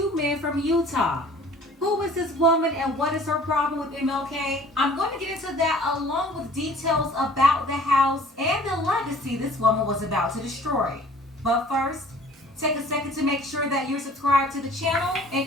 men from Utah. Who is this woman and what is her problem with MLK? I'm going to get into that along with details about the house and the legacy this woman was about to destroy. But first, take a second to make sure that you're subscribed to the channel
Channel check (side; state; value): both; normal; correlation 0.50